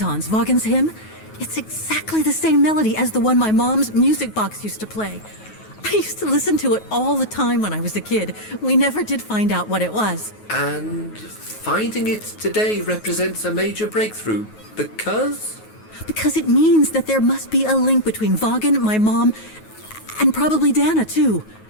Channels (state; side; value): late; right; 9.3 ms